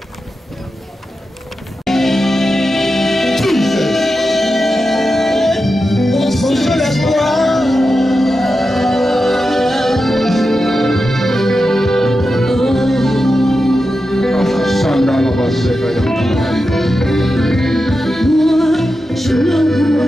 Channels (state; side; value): normal; both; correlation 0.90